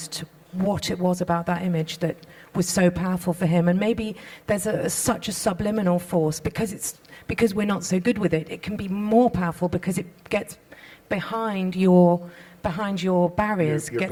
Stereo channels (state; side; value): identical; both; correlation 1.00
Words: what it was about that image that was so powerful for him. And maybe there's such a subliminal force, because we're not so good with it. It can be more powerful because it gets behind your barriers, your